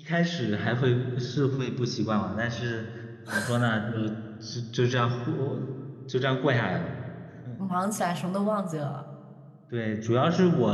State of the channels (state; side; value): identical; both; correlation 1.00